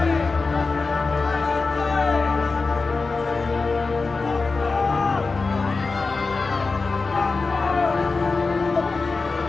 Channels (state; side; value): quieter; right; 4.0 dB